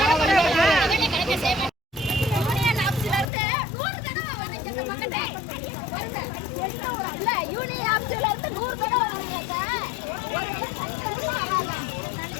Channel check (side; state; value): right; drops out; at 3.2 s